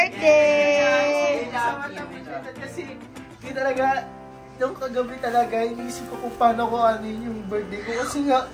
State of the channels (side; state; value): both; identical; correlation 1.00